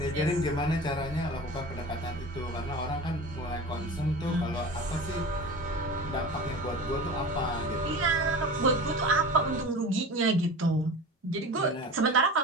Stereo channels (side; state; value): both; normal; correlation 0.33